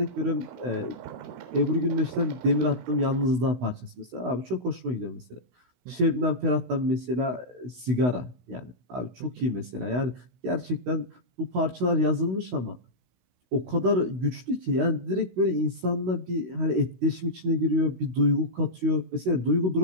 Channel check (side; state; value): left; late; 16 ms